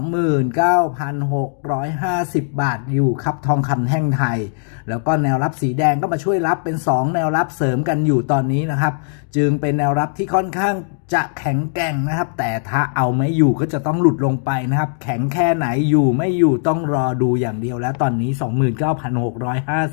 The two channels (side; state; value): right; silent; digital silence